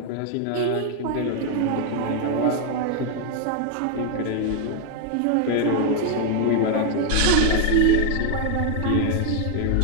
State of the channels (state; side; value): different; both; correlation 0.00